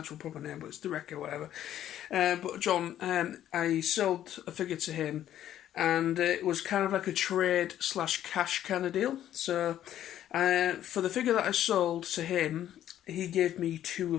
proper name, but it's the Wrecker, whatever. But John, I sold a figure to him, and it was kind of like a trade/cash kind of deal. So for the figure that I sold to him, he gave me two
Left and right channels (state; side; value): quieter; right; 11.6 dB